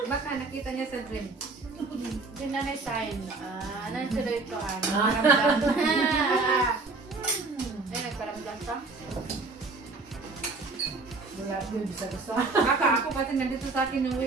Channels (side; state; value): left; quieter; 3.7 dB